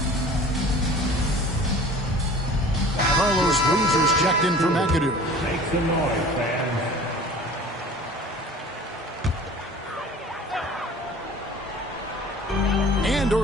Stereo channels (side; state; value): both; normal; correlation 0.44